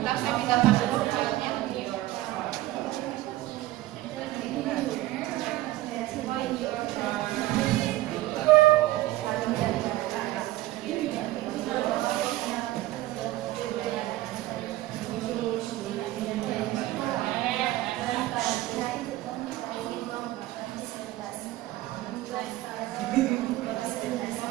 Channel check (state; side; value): quieter; left; 16.6 dB